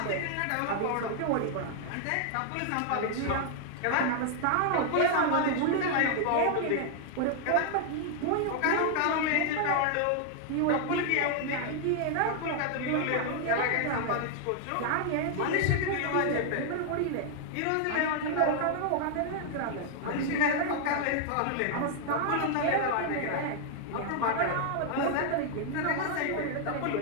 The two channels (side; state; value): both; different; correlation 0.00